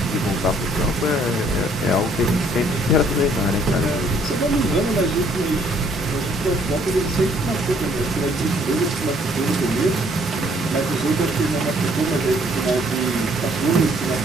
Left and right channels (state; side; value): normal; both; correlation 0.63